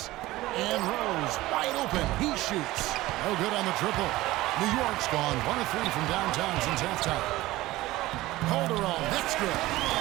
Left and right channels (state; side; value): quieter; left; 17.7 dB